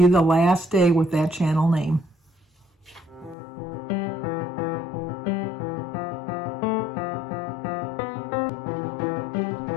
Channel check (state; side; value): drops out; right; at 3.4 s